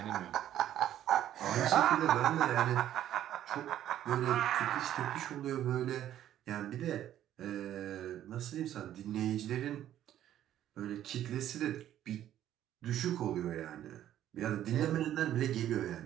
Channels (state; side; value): quieter; left; 11.8 dB